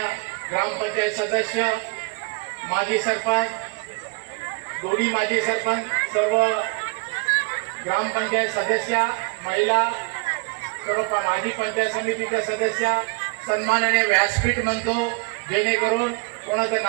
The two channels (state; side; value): quieter; left; 32.3 dB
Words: ग्रामपंचायत सदस्य, माजी सरपंच, दोन्ही माजी सरपंच, सर्व ग्रामपंचायत सदस्या, महिला, सर्व माजी पंचायत समितीच्या सदस्या, सन्माननीय व्यासपीठ म्हणतो, जेणेकरून कोणाचं